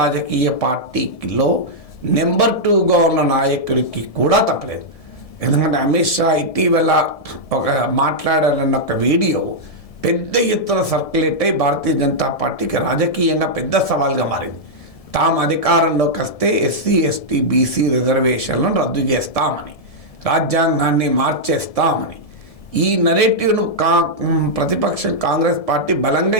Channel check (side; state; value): right; late; 1.7 ms